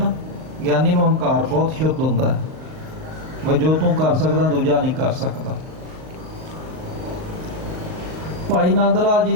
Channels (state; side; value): late; left; 38 ms